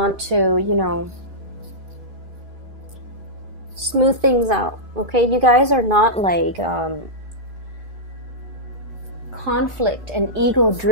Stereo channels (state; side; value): late; left; 2.6 ms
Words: to, you know, smooth things out, okay? You guys are not like conflict and